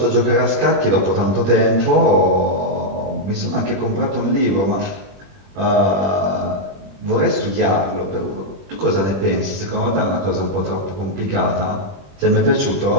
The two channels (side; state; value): left; late; 21 ms